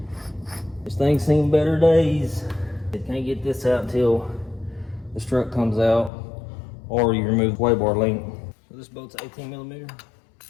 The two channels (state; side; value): drops out; right; at 6.1 s